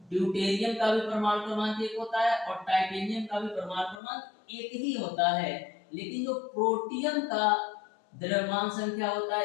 ड्यूटेरियम का भी परमाणु क्रमांक 1 होता है और टाइटेनियम का भी परमाणु क्रमांक 1 ही होता है। लेकिन जो प्रोटियम का द्रव्यमान संख्या होता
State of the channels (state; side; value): drops out; right; at 4.0 s